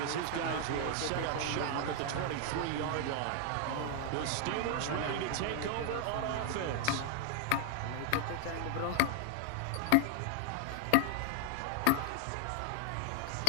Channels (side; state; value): both; different; correlation 0.00